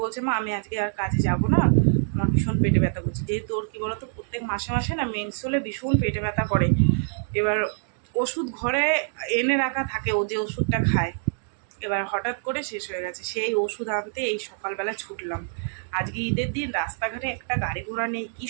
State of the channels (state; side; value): silent; left; digital silence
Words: বলছে, মা আমি আজকে আর কাজে যাব না, আমার ভীষণ পেটে ব্যথা করছে। যেহেতু ওর কী বলতো, প্রত্যেক মাসে মাসে না মেন্স হলে ভীষণ পেটে ব্যথা করে। এবার ওষুধ ঘরে এনে রাখা থাকে, ও যে ওষুধটা খায়, এবার হঠাৎ করে শেষ হয়ে গেছে। সেই ওষুধ আনতে এই সকালবেলা ছুটলাম। আজকে ঈদের দিন, রাস্তাঘাটে একটা গাড়ি ঘোড়া নেই, কী